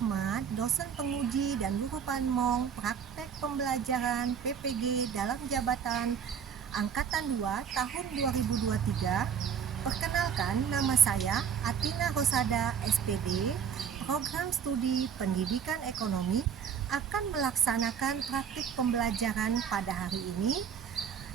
dosen penguji dan guru panmong praktek pembelajaran PPG dalam jabatan Angkatan 2 tahun 2023. Perkenalkan, nama saya Atina Rosada SPD, Program Studi Pendidikan Ekonomi akan melaksanakan praktik pembelajaran pada hari ini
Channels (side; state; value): left; quieter; 7.5 dB